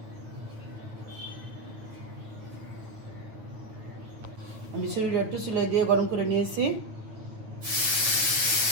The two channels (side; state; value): left; late; 9.3 ms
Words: আমি সিলিন্ডার একটু চুলায় দিয়ে গরম করে নিয়েছি।